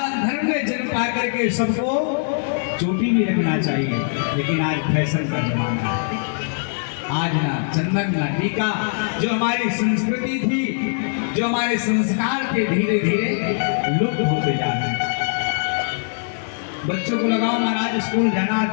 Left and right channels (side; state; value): right; silent; 64 dB below the other